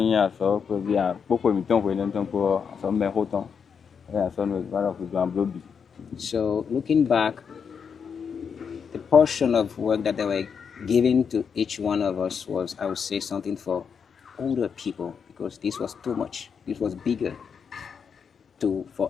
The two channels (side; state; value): right; quieter; 6.6 dB